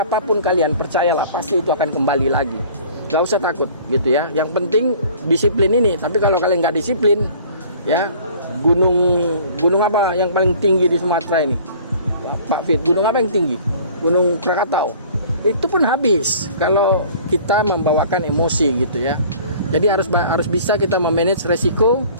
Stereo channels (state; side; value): inverted; both; correlation -0.49